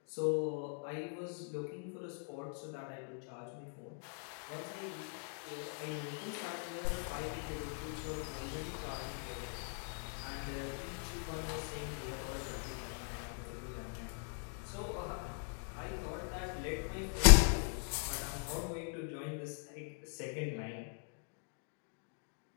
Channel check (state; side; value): silent; right; 51 dB below the other